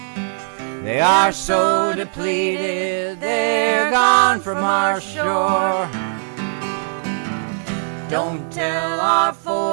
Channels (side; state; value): left; silent; 66 dB below the other